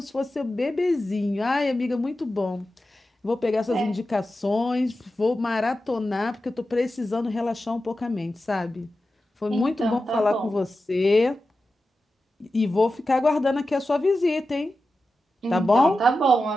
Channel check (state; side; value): normal; both; correlation 0.92